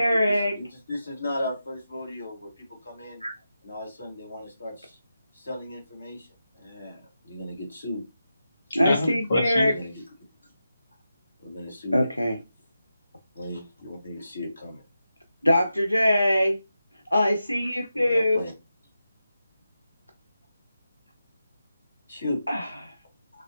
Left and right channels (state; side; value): inverted; both; correlation -0.89